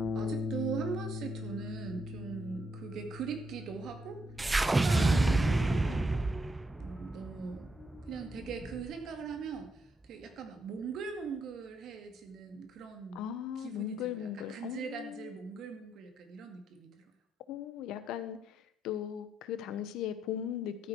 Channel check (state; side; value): normal; both; correlation 0.78